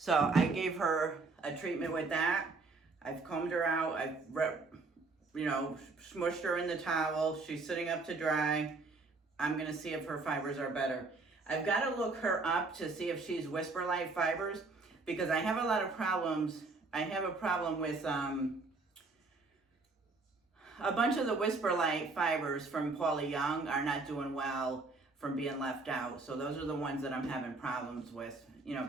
I gave her a treatment with that. I've combed her out. I've, smushed her in the towel. She's sitting up to dry. I'm gonna see if her fibers are better. I've got to look her up to see if she's Whisper Light fibers, because I have a lot of problems. I have a problem with a bunch of the Whisper Light fibers from Paula Young are not doing well from being left out. So those are the ones that I'm having problems with,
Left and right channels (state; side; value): quieter; left; 3.7 dB